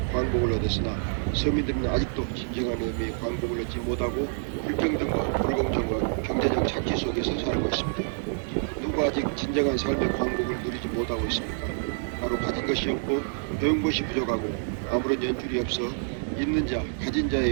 광복을 얻었으나 서민들은 아직도 진정한 의미의 광복을 얻지 못하고 불평등과 불공정과 경제적 착취 속에서 살고 있습니다. 누가 아직 진정한 삶의 광복을 누리지 못하고 있습니까? 바로 가진 것이 없고 배운 것이 부족하고 아무런 연줄이 없어 있는 자, 가진 자에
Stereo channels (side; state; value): left; silent; digital silence